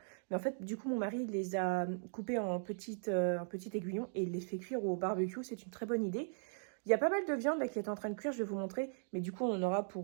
Mais en fait, du coup, mon mari les a coupés en petites aiguillons et il les fait cuire au barbecue. C'est une très bonne idée. Il y a pas mal de viande là qui est en train de cuire, je vais vous montrer. Mais du coup, on en aura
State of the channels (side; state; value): left; silent; digital silence